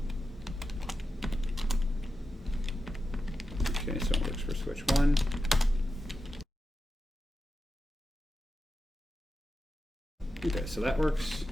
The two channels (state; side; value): normal; both; correlation 0.90